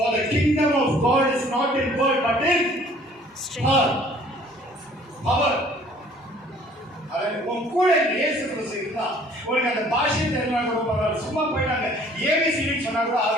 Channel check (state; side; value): normal; both; correlation 0.55